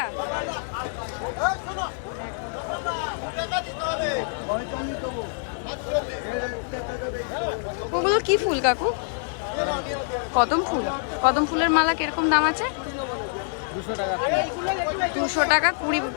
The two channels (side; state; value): right; silent; digital silence